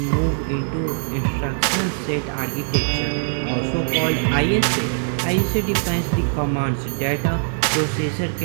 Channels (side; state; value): left; silent; digital silence